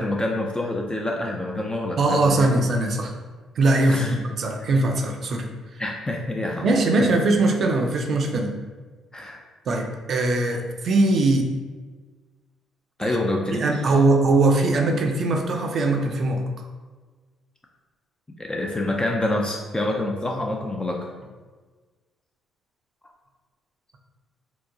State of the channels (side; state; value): both; normal; correlation 0.73